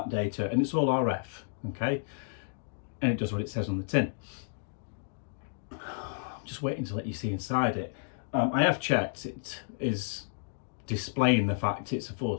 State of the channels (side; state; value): right; silent; digital silence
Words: data, and it's all RF, okay? And it does what it says on the tin. I'm just waiting to let you see inside it. I have checked, it is displaying the fact it's a